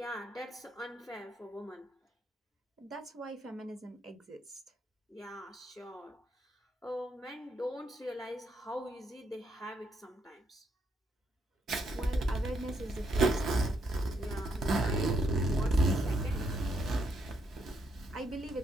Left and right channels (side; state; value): both; normal; correlation 0.76